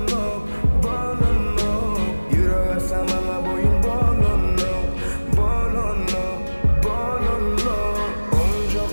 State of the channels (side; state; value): both; inverted; correlation -1.00